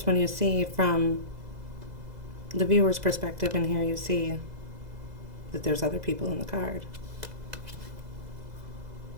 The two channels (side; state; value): left; late; 2.0 ms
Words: one you see from the viewer's perspective, and here you see that there's other people in the card.